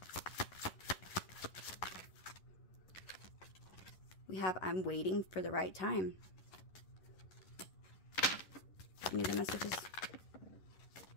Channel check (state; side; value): late; right; 11 ms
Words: We have, I'm waiting for the right time. Any other messages?